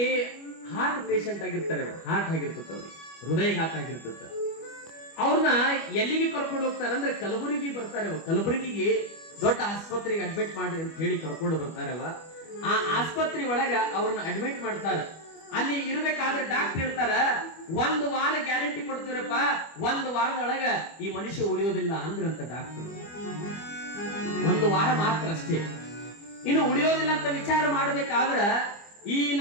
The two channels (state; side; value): late; right; 25 ms